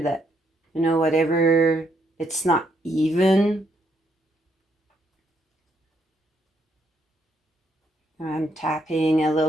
whatever, it's not even. I'm tapping a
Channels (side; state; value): both; normal; correlation 0.74